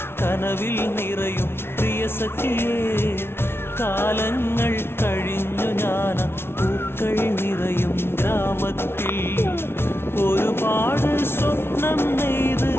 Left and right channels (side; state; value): right; late; 0.12 ms